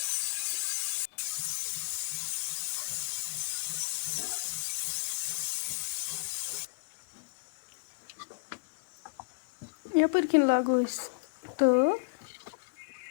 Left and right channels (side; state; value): right; quieter; 28.3 dB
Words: यपर किन लागो तो